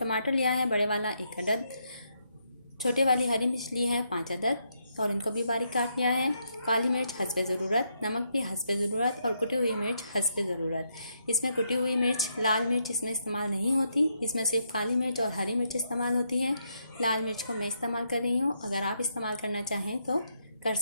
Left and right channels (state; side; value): inverted; both; correlation -0.78